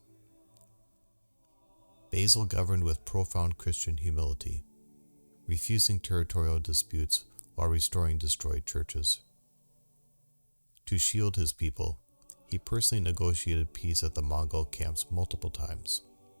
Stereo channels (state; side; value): inverted; both; correlation -1.00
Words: Basil governed with profound Christian humility, refusing territorial disputes while restoring destroyed churches. To shield his people, he personally negotiated peace at the Mongol camps multiple times.